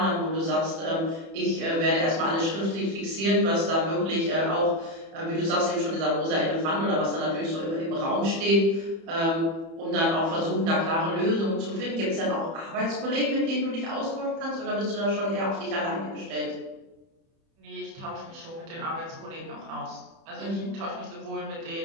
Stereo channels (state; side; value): late; left; 30 ms